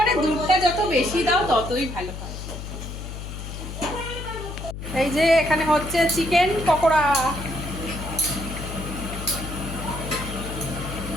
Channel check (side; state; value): left; noise; hum, 8 dB below the sound